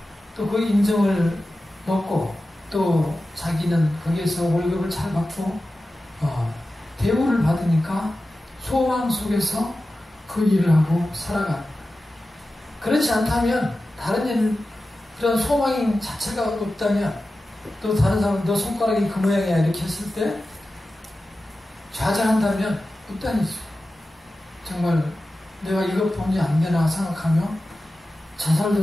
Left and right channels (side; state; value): both; normal; correlation 0.94